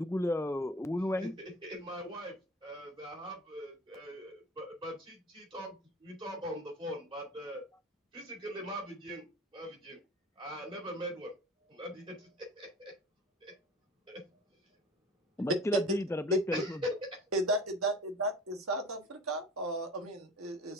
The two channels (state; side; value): normal; both; correlation 0.42